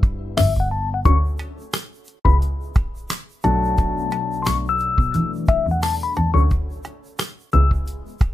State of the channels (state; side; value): normal; both; correlation 0.92